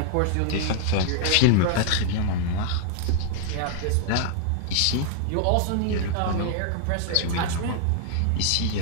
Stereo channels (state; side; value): different; both; correlation 0.00